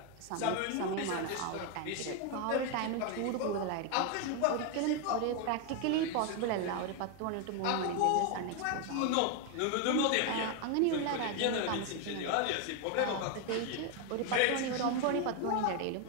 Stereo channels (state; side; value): different; both; correlation 0.01